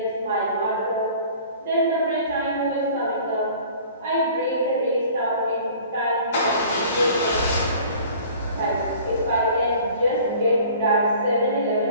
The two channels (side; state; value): both; inverted; correlation -0.48